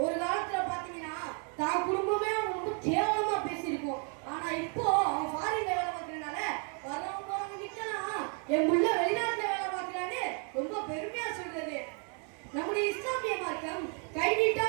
ஒரு காலத்துல பாத்தீங்கன்னா தான் குடும்பமே அவன் ரொம்ப கேவலமா பேசியிருக்கும். ஆனா இப்போ அவன் ஃபாரின்ல வேலை பார்க்கறதுனால வரவங்க நிக்கலாம், என் புள்ள வெளிநாட்டுல வேலை பார்க்கறான்னு ரொம்ப பெருமையா சொல்றது. நம்முடைய இஸ்லாமிய மார்க்கம் கை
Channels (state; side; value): quieter; left; 39.9 dB